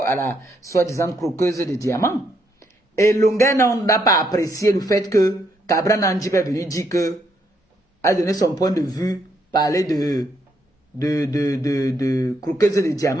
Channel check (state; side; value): normal; both; correlation 0.75